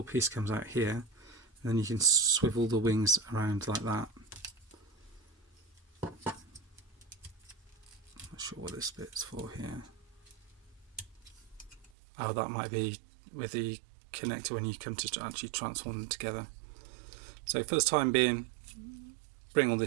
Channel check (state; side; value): drops out; left; at 11.9 s